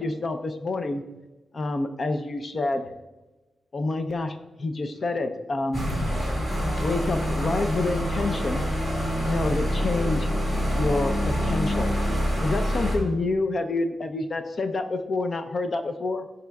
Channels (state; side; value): normal; both; correlation 0.90